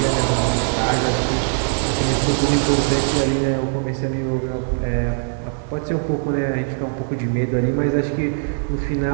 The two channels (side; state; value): left; silent; 57 dB below the other